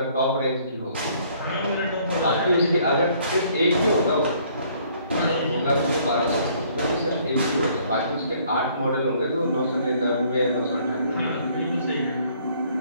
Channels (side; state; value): both; inverted; correlation -0.62